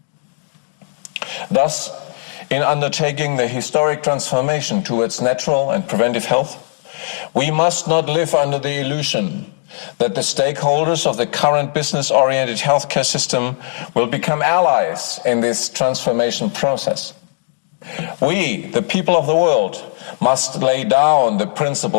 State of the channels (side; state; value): right; silent; digital silence